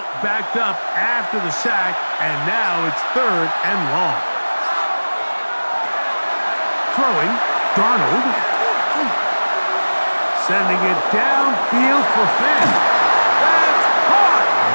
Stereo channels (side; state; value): both; inverted; correlation -1.00